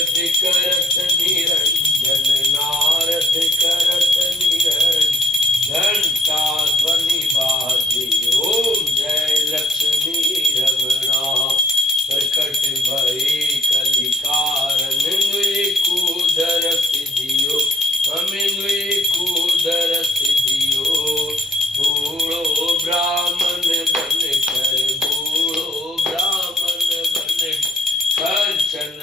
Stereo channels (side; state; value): both; normal; correlation 0.65